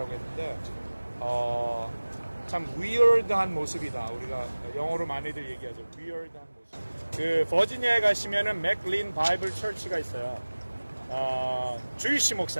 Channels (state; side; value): inverted; both; correlation -1.00